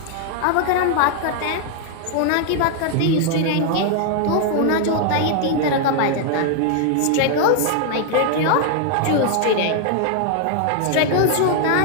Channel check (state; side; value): different; both; correlation 0.00